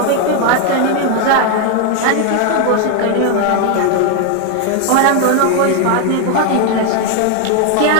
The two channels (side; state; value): both; different; correlation 0.01